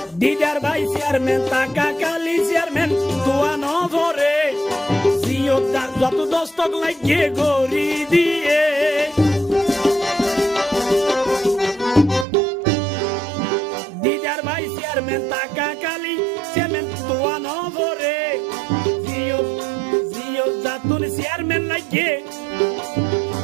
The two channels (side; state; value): left; drops out; at 12.2 s